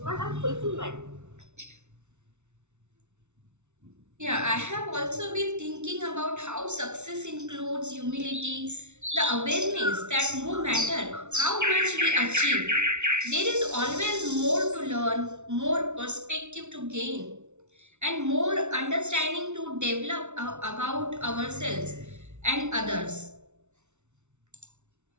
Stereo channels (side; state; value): left; late; 0.82 ms